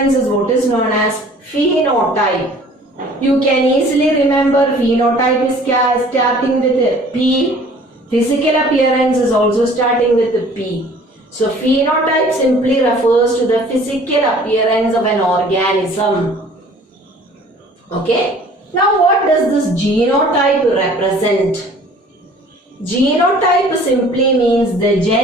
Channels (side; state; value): both; normal; correlation 0.51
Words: is what is known as phenotype. You can easily remember phenotype is starting with a P. Physical appearance is also starting with a P. So phenotype simply refers to the physical appearance of an organism. Okay. Now what does this genotype represent? Genotype simply means the